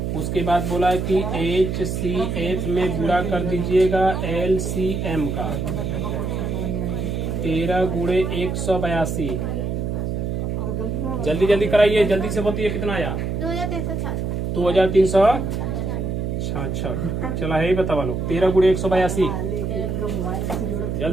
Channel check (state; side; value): noise; right; hum, 2 dB below the sound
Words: उसके बाद बोला है कि HCF में गुणा कर दीजिएगा LCM का, 13 गुणे 182। जल्दी जल्दी कराइए, जल्दी से बताइए कितना आया, 2366। चला है बतावा लोग, 13 गुणे 182।